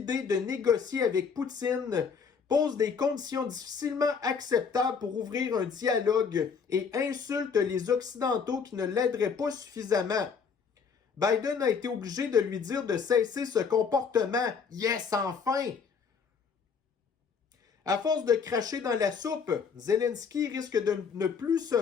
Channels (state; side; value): quieter; right; 6.0 dB